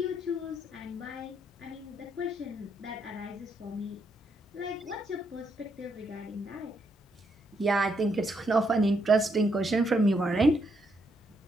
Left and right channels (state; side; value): normal; both; correlation 0.77